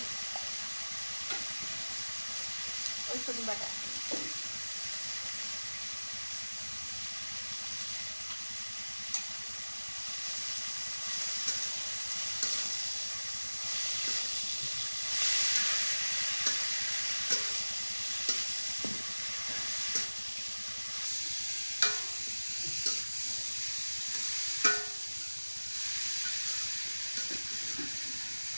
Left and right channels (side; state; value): both; inverted; correlation -1.00